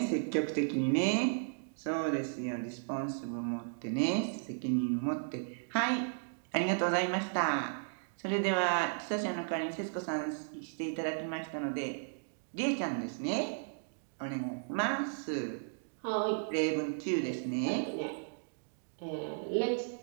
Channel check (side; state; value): left; silent; digital silence